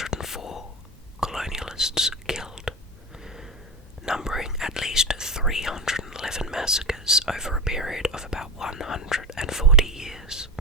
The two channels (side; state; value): both; normal; correlation 0.22